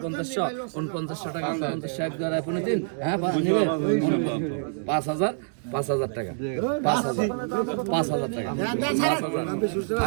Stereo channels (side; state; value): left; silent; digital silence